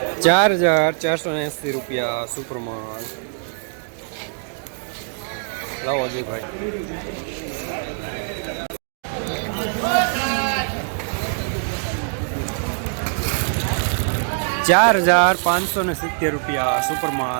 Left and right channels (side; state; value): left; silent; 55 dB below the other